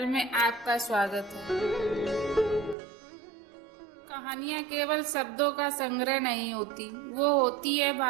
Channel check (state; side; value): drops out; left; at 2.8 s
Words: में आपका स्वागत है। कहानियाँ केवल शब्दों का संग्रह नहीं होती, वो होती है